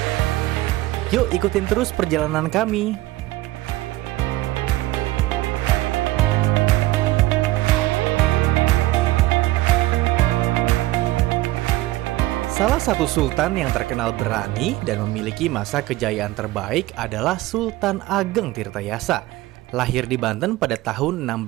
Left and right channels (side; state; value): left; quieter; 17.8 dB